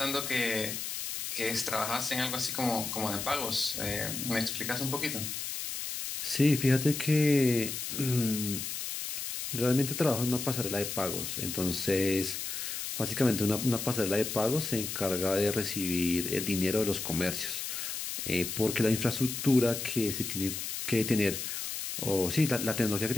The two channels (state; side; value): noise; left; hiss, 5 dB below the sound